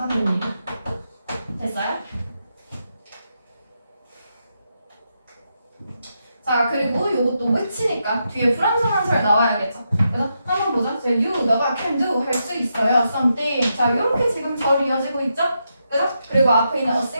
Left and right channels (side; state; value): both; inverted; correlation -0.84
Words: 됩니다. 됐어요? 자, 그리고 요것도 which니까 뒤에 불완전한살 나와야겠죠. 그래서 한번 보자. you, 너가 can do 할 수 있어요. something. 자, 요렇게 지금 절 이어지고 있죠? 그죠? 그리고 앞에 있는 a